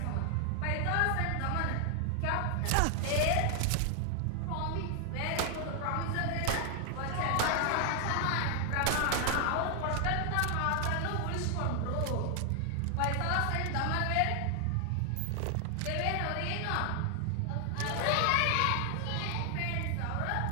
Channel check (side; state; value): both; different; correlation 0.00